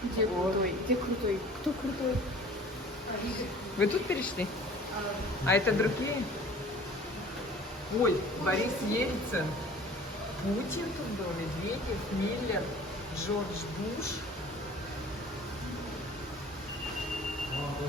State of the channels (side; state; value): both; normal; correlation 0.47